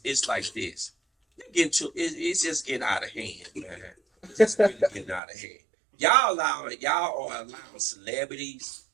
It's just getting out of hand, man. It's just really getting out of hand. Y'all are allowing celebrities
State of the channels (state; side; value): drops out; left; at 5.2 s